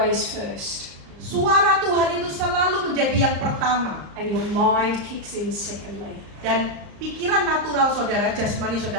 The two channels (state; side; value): late; left; 35 ms